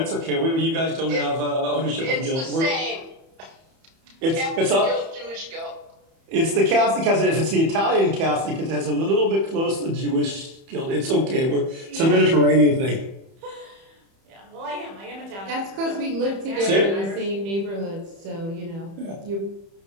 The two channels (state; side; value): late; left; 30 ms